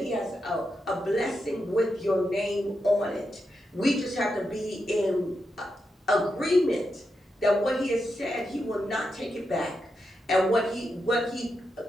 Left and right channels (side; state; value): both; normal; correlation 0.86